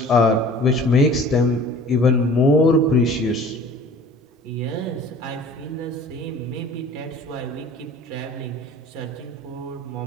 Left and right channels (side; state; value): both; normal; correlation 0.46